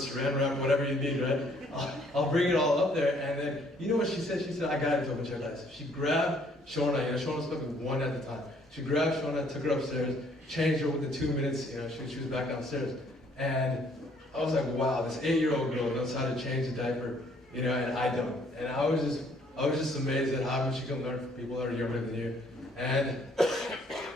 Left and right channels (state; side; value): normal; both; correlation 0.63